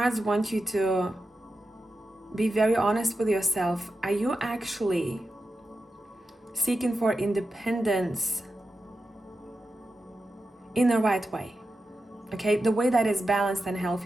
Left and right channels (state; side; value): normal; both; correlation 0.90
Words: want you to be very honest with yourself. Are you actually seeking for independence in the right way? Okay, the way that is balanced and